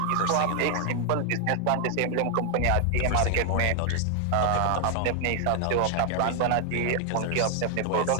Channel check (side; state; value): both; different; correlation 0.00